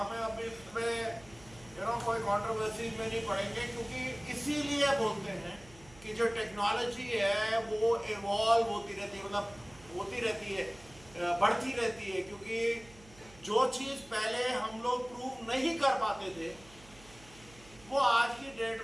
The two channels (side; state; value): right; noise; hum, 23 dB below the sound